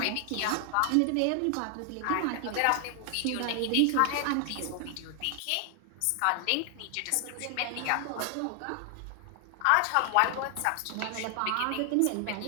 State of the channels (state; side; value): different; both; correlation 0.00